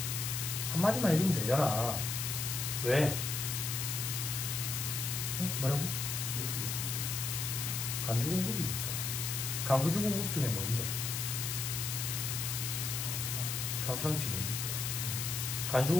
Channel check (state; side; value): noise; left; hiss, 2 dB below the sound